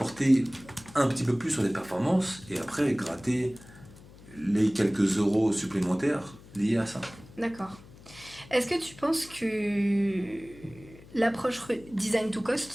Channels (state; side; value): noise; left; hum, 21 dB below the sound